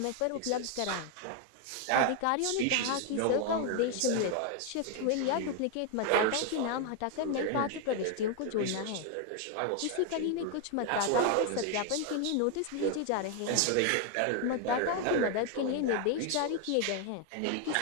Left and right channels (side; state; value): both; different; correlation 0.01